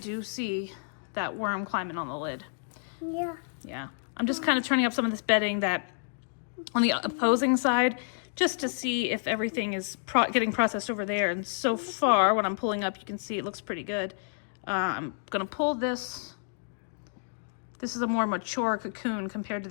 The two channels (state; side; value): silent; right; digital silence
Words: see that worm climbing on the lid. Yeah. Yeah. I'm just kind of turning up some of this bedding that on the opposing side just to see if everything is getting processed over there. And so far, when I'm pulling up, you can see it looks pretty good. I'm going to pull this. This is a more mature cocoon compared to